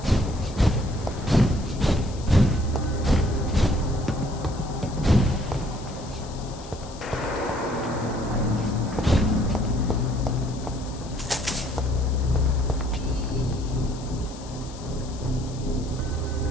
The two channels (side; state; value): left; noise; hiss, 18 dB below the sound